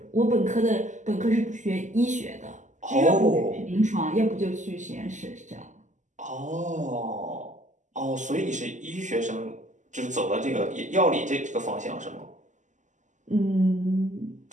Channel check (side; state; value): left; late; 0.36 ms